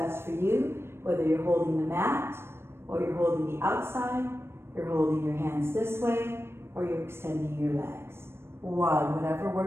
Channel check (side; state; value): left; late; 0.12 ms